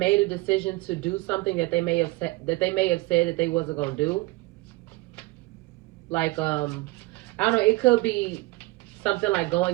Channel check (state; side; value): quieter; left; 21.8 dB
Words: a decision to do something that they may have said that they wasn't gonna do. Like I don't know, it could be something like